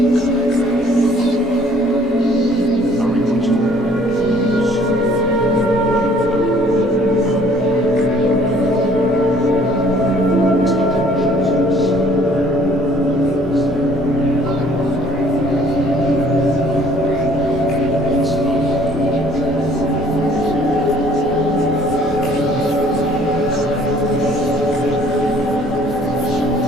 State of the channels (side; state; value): both; normal; correlation 0.57